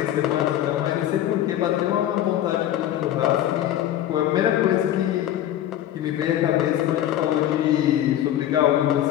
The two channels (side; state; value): right; quieter; 12.2 dB